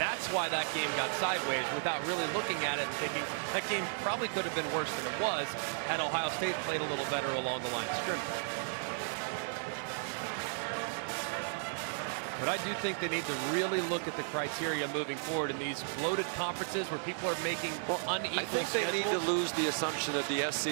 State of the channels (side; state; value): left; silent; 55 dB below the other